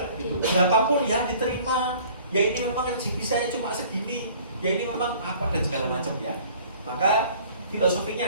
gitu. Berapapun ya diterima. Ya ini memang rezeki saya cuma segini, ya ini memang apa dan segala macam ya. Maka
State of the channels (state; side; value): inverted; both; correlation -0.51